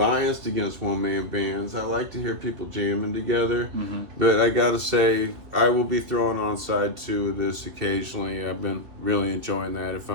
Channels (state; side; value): late; left; 3.1 ms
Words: against one man bands. I like to hear people jamming together, but I gotta say I will be throwing on side two of this occasionally. I've been really enjoying that if